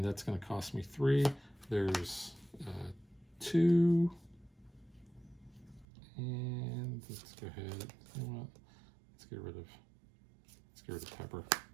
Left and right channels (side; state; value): left; drops out; at 5.9 s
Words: that's going to cost me 3. There's 2, and let's go ahead. You know what? Let's get rid of Pepper.